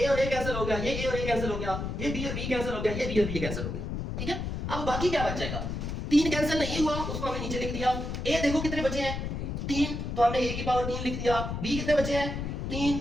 और a कैंसिल हो गया, ये a और a कैंसिल हो गया, ये b और b कैंसिल हो गया, ये b और b कैंसिल हो गया। ठीक है, अब बाकी क्या बच जाएगा? 3 कैंसिल नहीं हुआ, उसको हमने नीचे लिख दिया। a देखो कितने बचे हैं? 3, तो हमने a की पावर 3 लिख दिया। b कितने बचे हैं? 3,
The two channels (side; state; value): left; noise; rumble, 4 dB below the sound